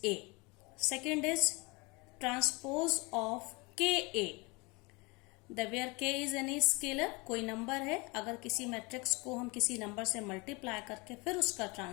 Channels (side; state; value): right; quieter; 27.1 dB